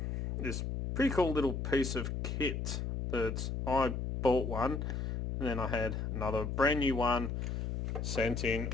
This pretty cool little piece of kit that I bought one, and then I had another brand new one sent in,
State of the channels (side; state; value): left; noise; hum, 2 dB below the sound